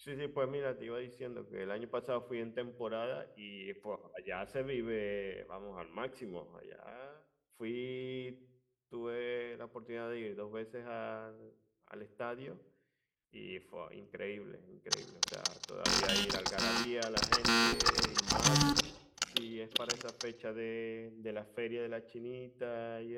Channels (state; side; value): identical; both; correlation 1.00